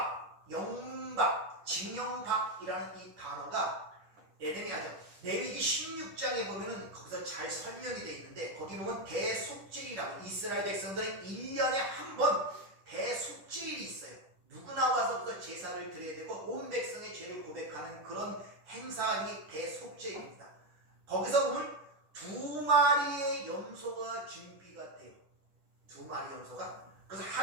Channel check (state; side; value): late; left; 10 ms